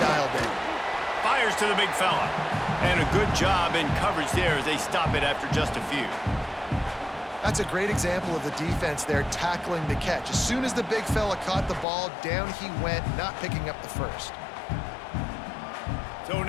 in. Fires to the big fella. And a good job in coverage there as they stop it after just a few. That's a great example of the defense there tackling the catch. As soon as the big fella caught the ball, down he went, not picking up the first. So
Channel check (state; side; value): drops out; right; at 11.9 s